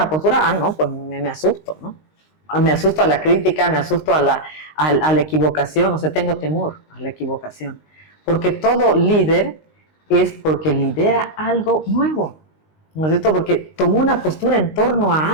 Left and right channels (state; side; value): late; right; 19 ms